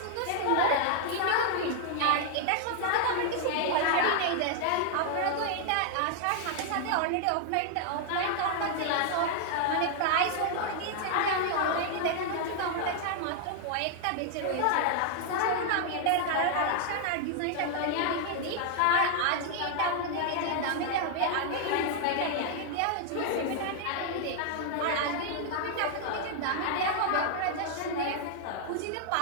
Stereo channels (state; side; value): different; both; correlation -0.01